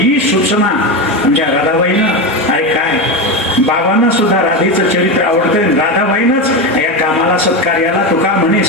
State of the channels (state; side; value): normal; both; correlation 0.16